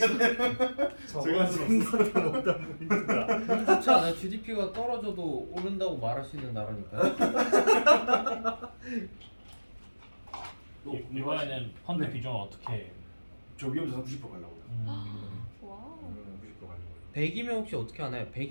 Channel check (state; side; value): inverted; both; correlation -1.00